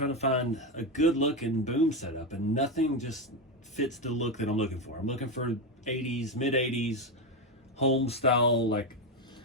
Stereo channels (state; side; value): normal; both; correlation 0.11